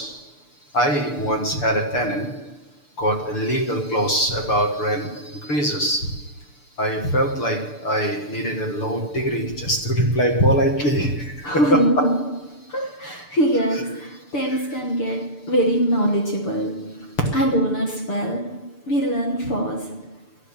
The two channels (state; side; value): late; right; 6.8 ms